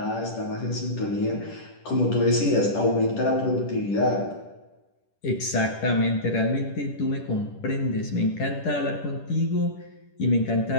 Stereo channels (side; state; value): right; late; 10 ms